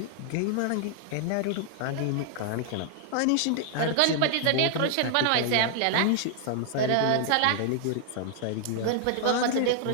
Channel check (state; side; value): different; both; correlation 0.00